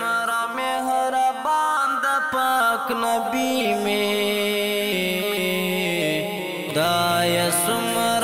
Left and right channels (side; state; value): both; identical; correlation 1.00